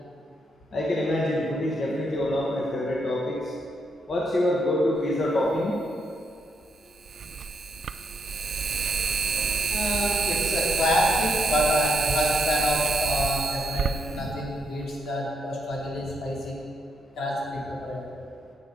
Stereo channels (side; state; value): both; normal; correlation 0.78